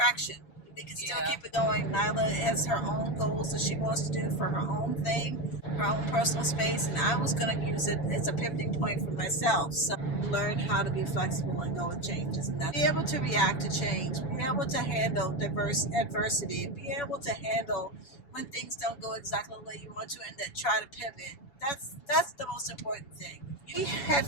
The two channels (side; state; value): right; late; 7.0 ms